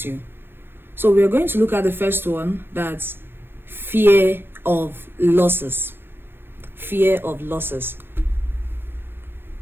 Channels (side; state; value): left; late; 0.10 ms